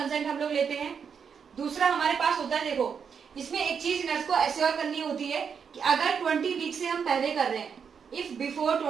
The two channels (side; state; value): left; quieter; 6.7 dB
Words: हम लोग लेते हैं। दूसरा हमारे पास होता है, देखो इसमें एक चीज नर्स को एश्योर करनी होती है कि अगर 20 वीक से हम पहले कर रहे हैं, if before